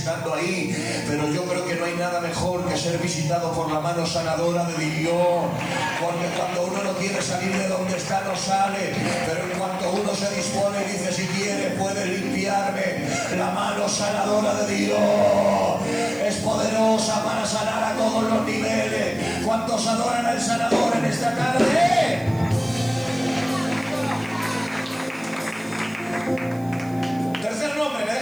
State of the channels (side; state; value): right; noise; hiss, 24 dB below the sound